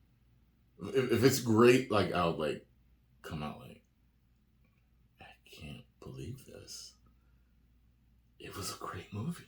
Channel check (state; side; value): identical; both; correlation 1.00